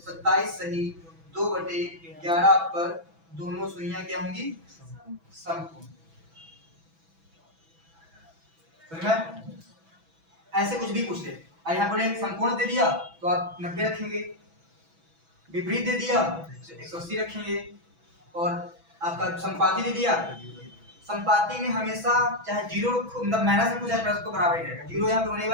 सही 2/11 पर दोनों सुइयां क्या होंगी समकोण। समझ में? ऐसे कुछ भी पूछ ले, यहाँ पर समकोण दे दिया तो आप 90 रखेंगे, विपरीत दे दिया तो 180 रखेंगे, और आपका समपाती दे दिया। समपाती में हमेशा चाहे 0 मतलब माइनस रखो चाहे प्लस को बराबर ही रहेगा। 0 यहाँ पे होने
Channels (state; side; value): late; left; 6.1 ms